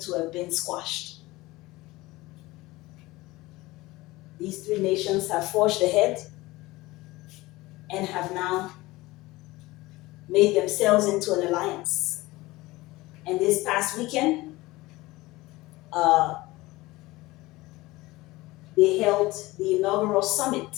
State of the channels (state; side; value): quieter; right; 20.0 dB